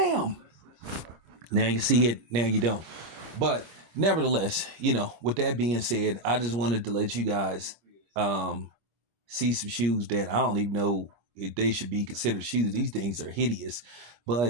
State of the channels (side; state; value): left; late; 26 ms